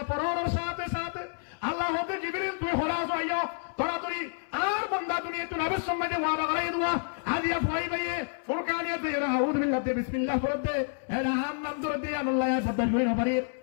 পড়ার সাথে সাথে আল্লাহ হতে জিবরিল তুই হরাস আইয়া তরাতরি আর বান্দা দুনিয়া তুই নবীর সঙ্গে ওয়াদা করাই দুয়া হাদিয়া ফরাই ভাইয়ে ফুরকানিয়াতে এরা আউযু বিল্লাহি বিসমিল্লাহ পড়তে এরা নাম ধরে আল্লাহ পদ্দাশ করি নপারি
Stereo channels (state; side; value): silent; right; 58 dB below the other